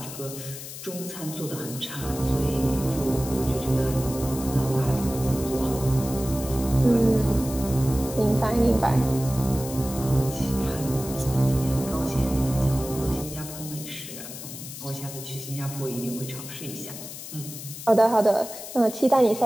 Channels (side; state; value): left; noise; hiss, 11 dB below the sound